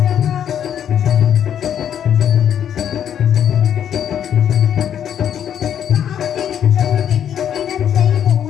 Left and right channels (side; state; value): right; quieter; 9.4 dB